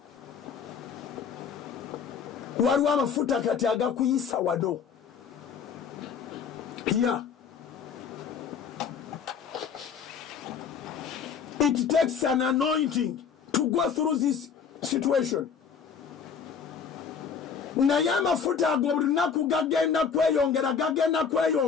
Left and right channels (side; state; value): right; quieter; 6.6 dB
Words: Waliwo amafuta kati agakuyisa wado. Here, it takes an anointing to go through this situation. Naye amafuta ago buli lunaku gagenda